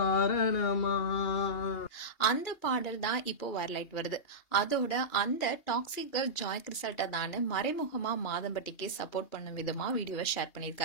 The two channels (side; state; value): right; late; 2.8 ms